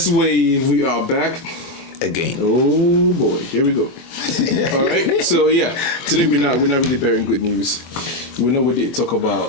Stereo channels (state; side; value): late; right; 24 ms